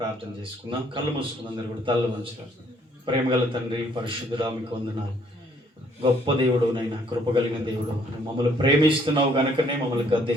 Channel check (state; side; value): normal; both; correlation 0.65